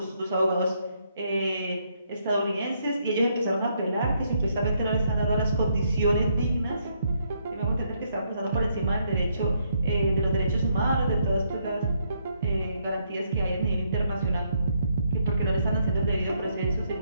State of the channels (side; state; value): both; inverted; correlation -0.74